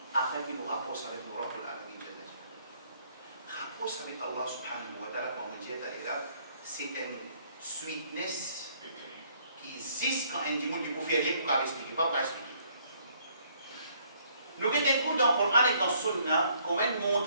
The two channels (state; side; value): inverted; both; correlation -0.65